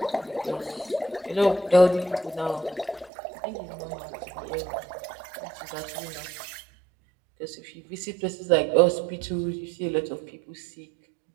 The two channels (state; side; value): drops out; left; at 3.1 s